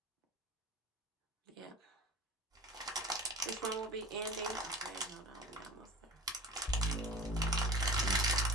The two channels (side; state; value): both; normal; correlation 0.39